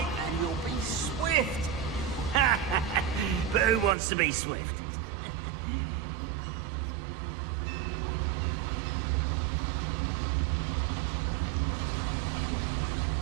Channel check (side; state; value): left; drops out; at 4.0 s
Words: and you'll be swift. But who wants to be swift?